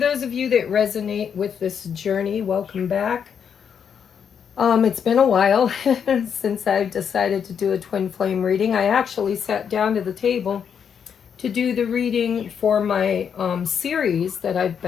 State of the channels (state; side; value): quieter; right; 7.5 dB